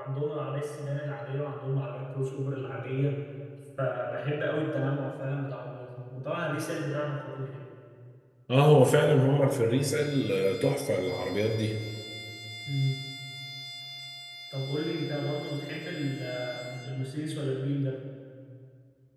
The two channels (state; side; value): identical; both; correlation 1.00